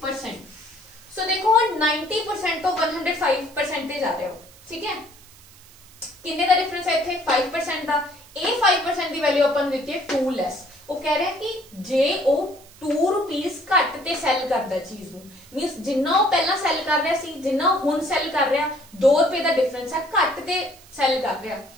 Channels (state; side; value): noise; right; hiss, 24 dB below the sound